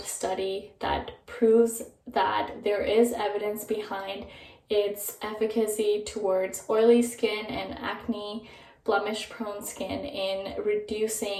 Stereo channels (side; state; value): both; identical; correlation 1.00